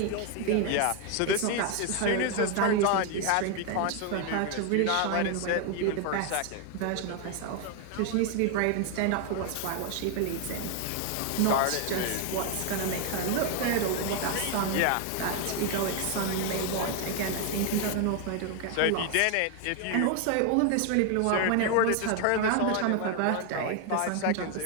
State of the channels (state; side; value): different; both; correlation 0.01